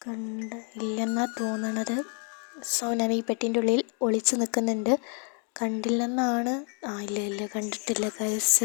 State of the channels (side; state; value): right; quieter; 39.9 dB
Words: ഇല്ലെന്നാണ് തോന്നണത്. സോ ഞാൻ ഈ പെട്ടിൻ്റെ ഉള്ളിൽ ഒളിച്ച് നിൽക്കുന്നുണ്ട്. കണ്ടില്ലെന്നാണ്. ഇല്ല കണ്ടിട്ടില്ല